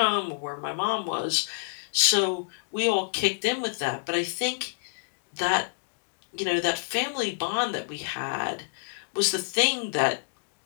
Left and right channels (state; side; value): silent; right; digital silence